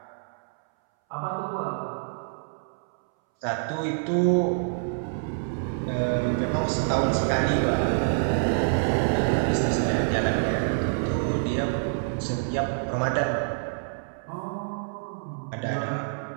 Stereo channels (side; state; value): left; silent; 60 dB below the other